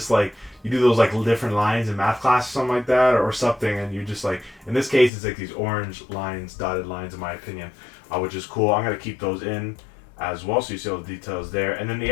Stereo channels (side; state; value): right; drops out; at 5.1 s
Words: like you do those like different lines in math class or something like that, or something, and you just like, in this case it's like these orange lines, dotted lines, in my opinion, which is cool. I'm gonna keep those in as well, so you see all the details there. And then the